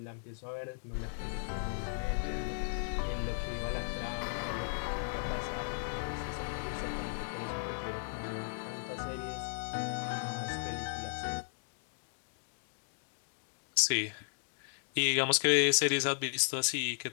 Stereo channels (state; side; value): silent; right; digital silence